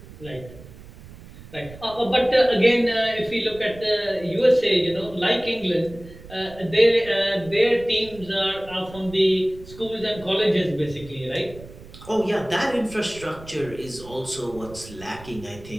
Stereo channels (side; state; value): right; noise; rumble, 18 dB below the sound